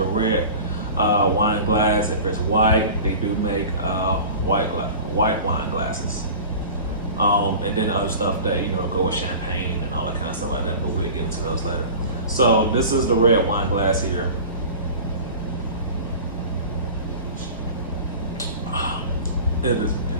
a red wine glass. If it's white, they do make white wine glasses. And then the other stuff that go with champagne and all that kind of stuff like that. But we'll get into those later. So this is the red wine glass here. It's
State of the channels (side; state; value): both; inverted; correlation -0.37